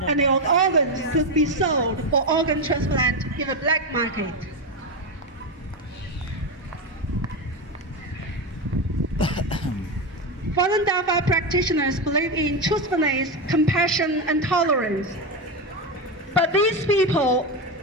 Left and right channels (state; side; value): normal; both; correlation 0.13